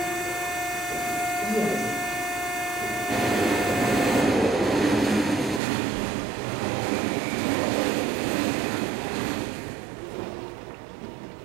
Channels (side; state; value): left; drops out; at 5.6 s